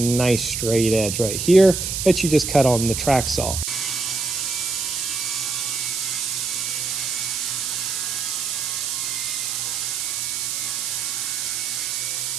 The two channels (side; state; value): right; noise; hiss, 2 dB below the sound